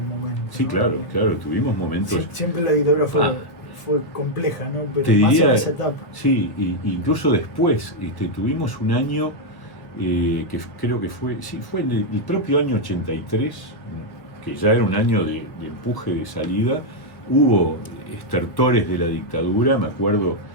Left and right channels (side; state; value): right; late; 1.5 ms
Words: momento. Sí, ¿no? Claro, tuvimos momentos... Siempre la dictadura fue compleja, ¿no? Pero te más diría, en esa etapa. Sí, incluso después tuvimos un año que creo que fue en el propio año 83, que ya era un año de empuje, de salida. Hubo estertores de la dictadura. Me acuerdo